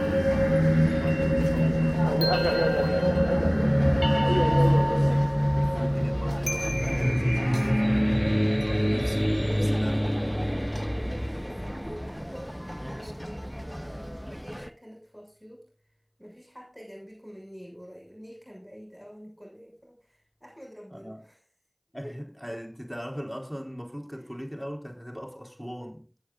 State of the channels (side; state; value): both; identical; correlation 1.00